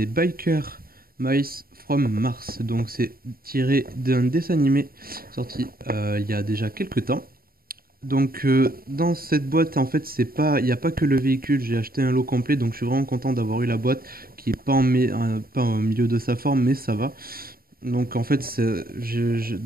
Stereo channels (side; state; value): left; late; 0.43 ms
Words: Biker Mice from Mars, donc c'est tiré d'un dessin animé sorti il y a déjà quelques temps. Donc dans cette boîte en fait c'est pas il n'y a pas que le véhicule, j'ai acheté un lot complet donc je suis vraiment content d'avoir eu la boîte qui est pas pas au milieu de sa forme mais ça va. Donc en fait